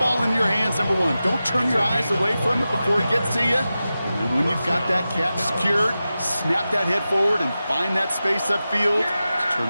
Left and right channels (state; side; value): inverted; both; correlation -0.93